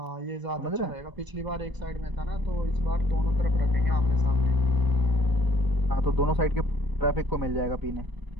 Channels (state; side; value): late; left; 1.0 ms